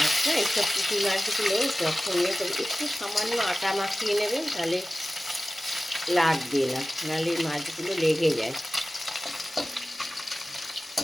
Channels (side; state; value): both; normal; correlation 0.96